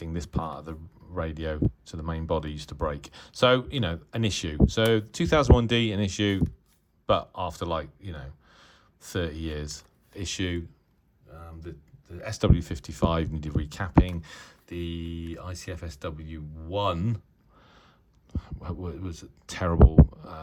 this part of the radio to the main body used to break. So, an issue. So 2001D, an issue, but after 30 years, issue. The SW55 needed recapping. The ICF-SW1 was terrible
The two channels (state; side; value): identical; both; correlation 1.00